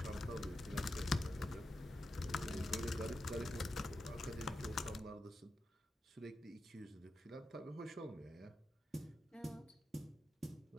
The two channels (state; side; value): normal; both; correlation 0.88